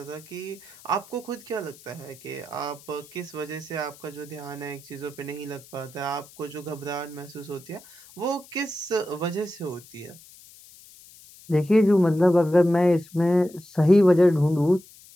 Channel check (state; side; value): noise; left; hiss, 22 dB below the sound